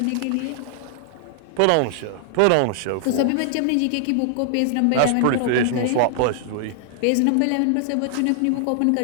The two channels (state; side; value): different; both; correlation 0.00